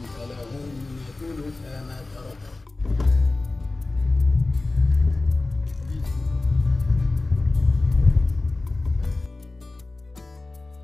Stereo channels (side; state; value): right; quieter; 3.2 dB